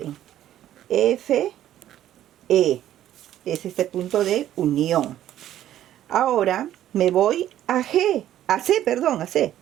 F, E. Es este punto de unión. Ahora me voy a G. A C.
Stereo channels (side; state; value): left; quieter; 12.2 dB